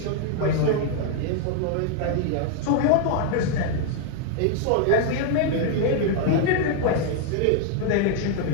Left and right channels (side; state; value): both; different; correlation 0.00